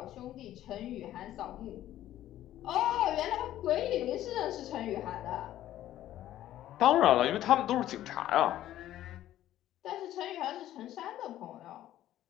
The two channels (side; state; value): right; quieter; 13.1 dB